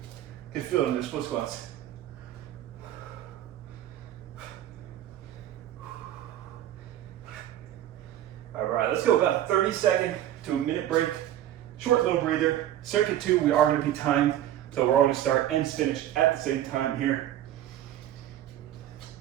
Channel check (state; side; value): quieter; left; 12.2 dB